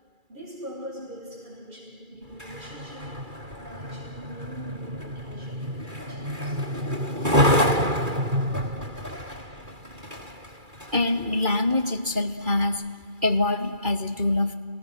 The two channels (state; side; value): late; left; 2.3 ms